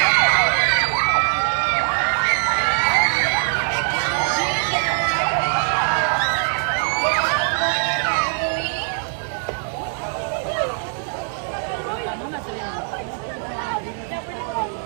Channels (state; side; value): silent; left; 64 dB below the other